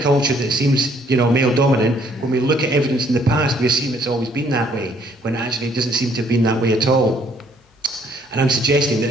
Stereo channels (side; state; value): both; normal; correlation 0.64